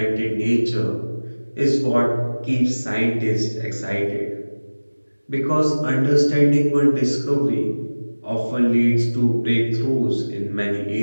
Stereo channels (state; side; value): inverted; both; correlation -1.00